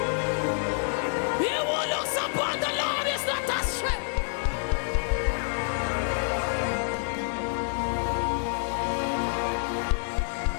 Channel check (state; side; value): silent; right; 58 dB below the other